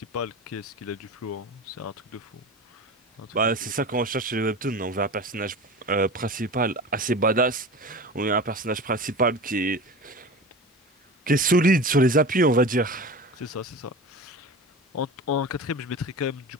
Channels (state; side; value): normal; both; correlation 0.32